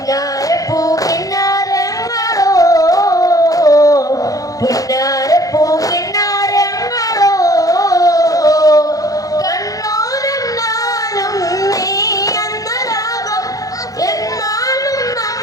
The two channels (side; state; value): right; late; 0.17 ms